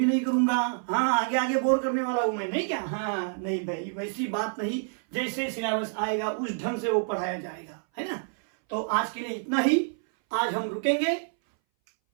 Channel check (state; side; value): silent; left; 59 dB below the other